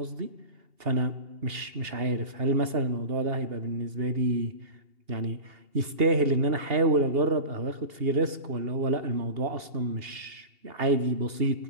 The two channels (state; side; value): late; left; 2.8 ms